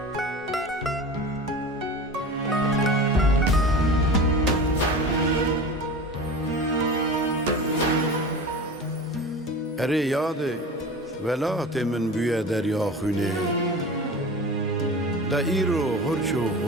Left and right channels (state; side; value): normal; both; correlation 0.33